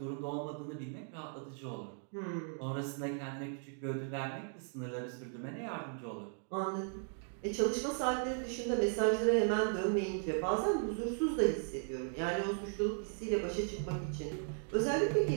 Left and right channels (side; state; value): left; silent; 53 dB below the other